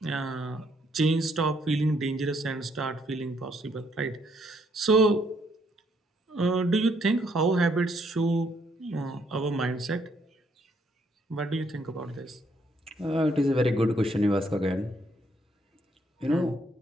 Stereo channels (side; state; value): both; normal; correlation 0.70